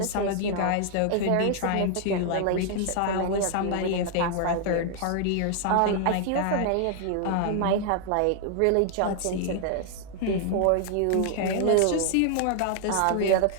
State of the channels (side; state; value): both; different; correlation 0.00